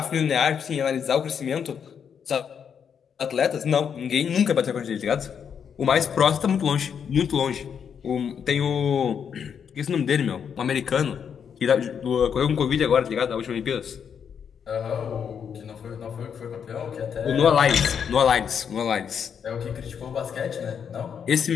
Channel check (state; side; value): quieter; right; 7.5 dB